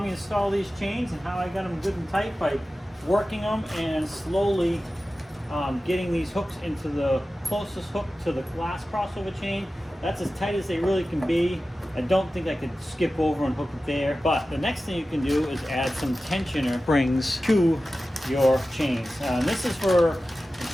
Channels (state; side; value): normal; both; correlation 0.94